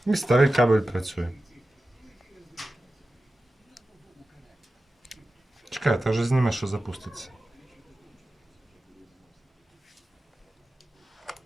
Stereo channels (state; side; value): normal; both; correlation 0.94